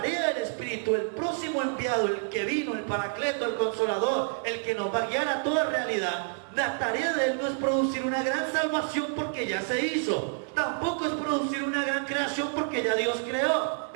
del Espíritu, el próximo enviado, el que vino, el Paracleto, el Consolador, el que nos va a guiar a toda realidad, la tarea de Él no es producir una gran salvación porque ya se hizo. Tampoco es producir una gran creación porque ya Dios creó.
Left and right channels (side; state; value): left; silent; 59 dB below the other